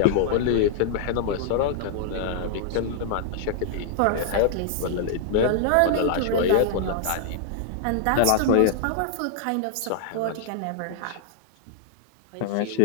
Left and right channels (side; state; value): both; different; correlation -0.01